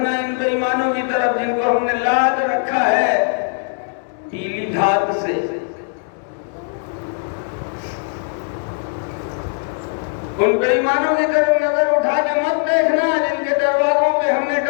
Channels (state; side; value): silent; right; 65 dB below the other